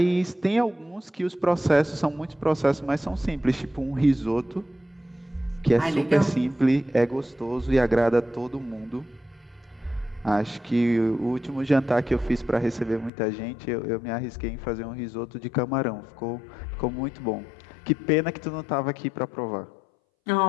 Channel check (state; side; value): drops out; right; at 13.1 s